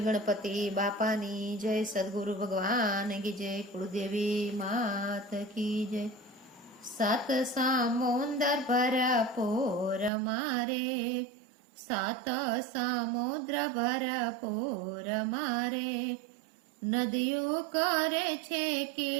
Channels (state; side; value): drops out; left; at 10.1 s